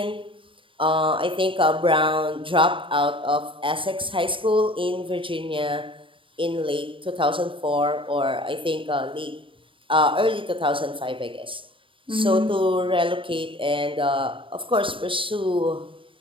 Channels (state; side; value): late; left; 0.25 ms